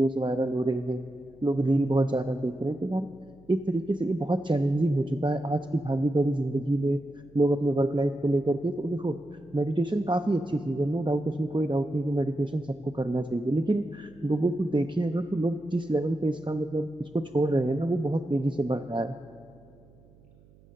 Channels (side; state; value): right; noise; hum, 27 dB below the sound